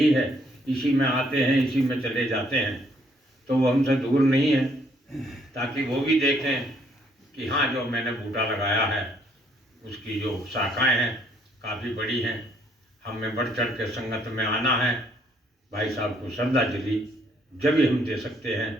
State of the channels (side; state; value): both; normal; correlation 0.67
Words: है, इसी में आते हैं इसी में चले जाते हैं, तो वो हमसे दूर नहीं है, ताकि वो भी देखें कि हाँ जो मैंने बूटा लगाया है उसकी जो शाखाएं हैं काफ़ी बड़ी हैं। हमें बढ़ चढ़ के संगत में आना है। भाई साहब को श्रद्धांजलि जब भी हम दे सकते